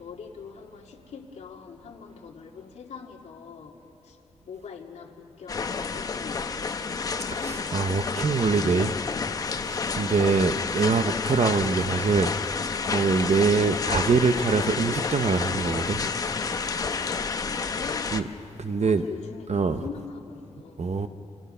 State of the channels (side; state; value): both; normal; correlation 0.52